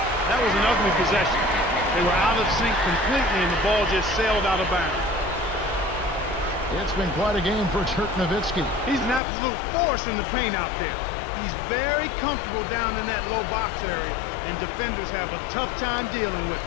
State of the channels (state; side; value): drops out; right; at 9.2 s